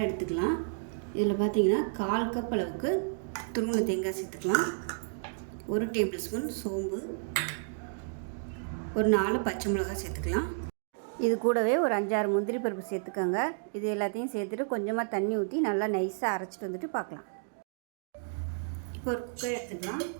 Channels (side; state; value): left; silent; digital silence